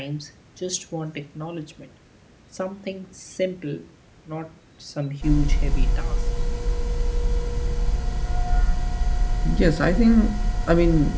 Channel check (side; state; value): both; identical; correlation 1.00